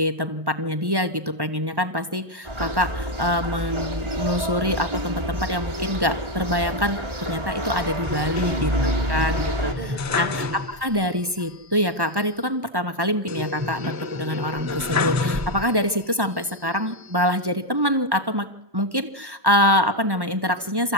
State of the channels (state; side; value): late; left; 1.1 ms